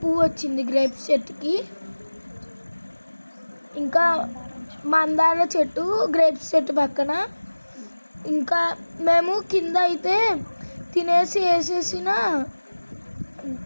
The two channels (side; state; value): both; inverted; correlation -1.00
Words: వచ్చింది గ్రేప్స్ చెట్టుకి. ఇంకా మందార చెట్టు గ్రేప్స్ చెట్టు పక్కన. ఇంకా మేము కింద అయితే తినేసి వేసేసిన